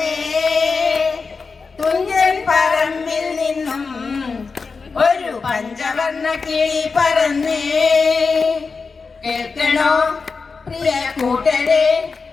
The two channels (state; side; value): quieter; right; 4.7 dB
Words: തുഞ്ചൻ പറമ്പിൽ നിന്നും, ഒരു പഞ്ചവർണ്ണ കിളി പറന്നേ. കേൾക്കണോ പ്രിയ കൂട്ടരെ,